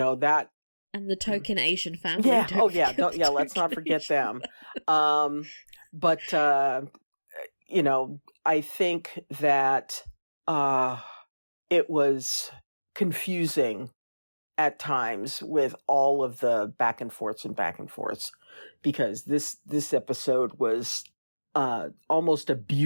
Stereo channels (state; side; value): inverted; both; correlation -1.00